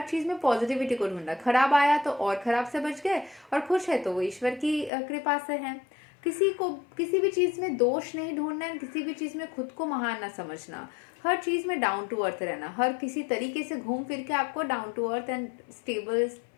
चीज़ में पॉजिटिविटी को ढूंढना, खराब आया तो और खराब से बच गए, और खुश है तो वो ईश्वर की कृपा से है। किसी को किसी भी चीज़ में दोष नहीं ढूंढना है, किसी भी चीज़ में खुद को महान ना समझना, हर चीज़ में डाउन टू अर्थ रहना, हर किसी तरीके से घूम फिर के आपको down to earth and stable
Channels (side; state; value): right; drops out; at 4.9 s